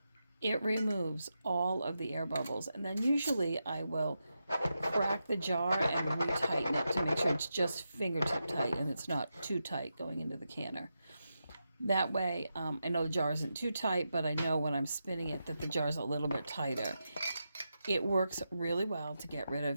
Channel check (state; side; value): inverted; both; correlation -0.88